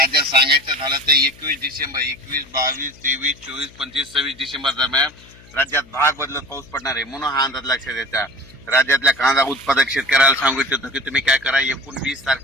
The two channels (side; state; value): left; noise; hum, 24 dB below the sound